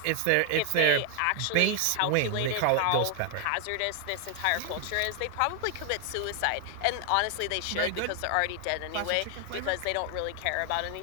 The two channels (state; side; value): different; both; correlation 0.00